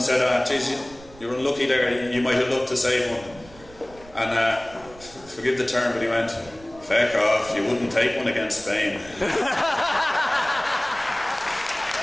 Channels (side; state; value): right; noise; rumble, 22 dB below the sound